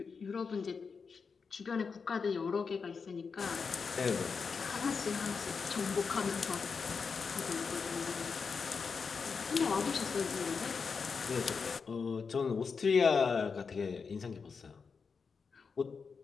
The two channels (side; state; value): right; quieter; 5.4 dB